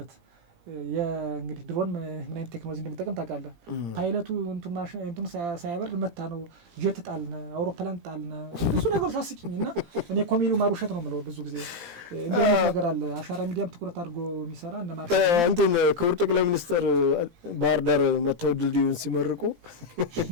የእንግዲህ ድሮን ምን አይነት ቴክኖሎጂ እንደሚጠቀም ታውቃለህ። ፓይለቱ እንቱን ሳያበርድ መታ ነው ጀት ጣልነ፣ አውሮፕላን ጣልነ፣ ብዙ ነገር ታስቂኝና እኔ ኮሜዲው ማሩሸት ነው የምለው። ብዙ ጊዜ እንደ ነገር አለ። አሻራ ሚዲያም ትኩረት አድርጎ የሚሰራ እነ ማርሸት እንትን ክቡር ጠቅላይ ሚኒስትር ባህር ዳር መተው ድልድዩን ሲመርቁ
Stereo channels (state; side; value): late; left; 17 ms